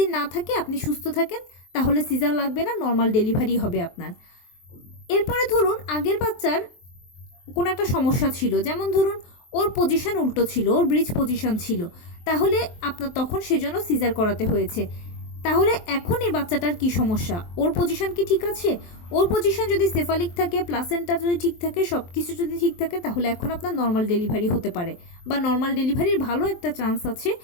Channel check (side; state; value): right; late; 23 ms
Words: না থাকে, আপনি সুস্থ থাকেন, তাহলে সিজার লাগবে না, নর্মাল ডেলিভারি হবে আপনার। এরপরে ধরুন আগের বাচ্চার কোনো একটা সমস্যা ছিল, যেমন ধরুন ওর পজিশন উল্টো ছিল, ওর ব্রিজ পজিশন ছিল, তাহলে আপনার তখন সেজন্য সিজার করাতে হয়েছে। তাহলে এখন এই বাচ্চাটার কি সমস্যা? ওর পজিশন কি ঠিক আছে? ওর পজিশন যদি সেফালিক থাকে, প্লাসেন্টা যদি ঠিক থাকে, সব কিছু যদি ঠিক থাকে, তাহলে এখন আপনার নর্মাল ডেলিভারি হতে পারে, বা নর্মাল ডেলিভারির ভালো একটা চান্স আছে।